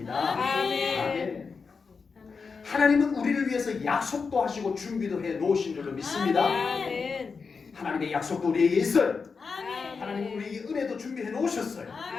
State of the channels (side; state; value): right; quieter; 5.1 dB